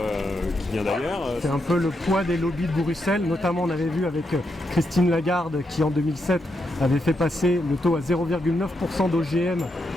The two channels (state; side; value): normal; both; correlation 0.82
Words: qui vient d'ailleurs. C'est un peu le poids des lobbies de Bruxelles, notamment on avait vu avec Christine Lagarde qui en 2007 avait fait passer le taux à 0,9% d'OGM